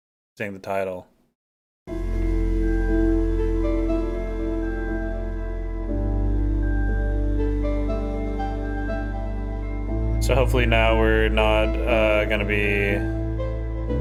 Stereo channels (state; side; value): identical; both; correlation 1.00